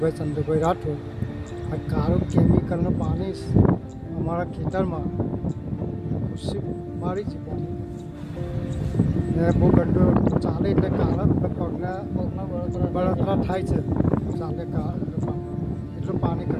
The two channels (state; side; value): identical; both; correlation 1.00